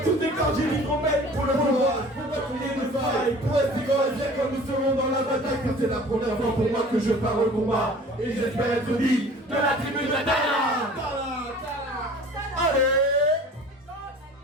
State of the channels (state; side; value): normal; both; correlation 0.45